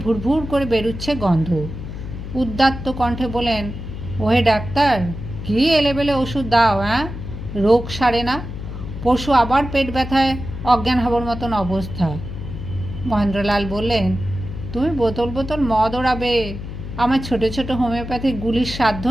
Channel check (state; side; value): noise; left; hum, 9 dB below the sound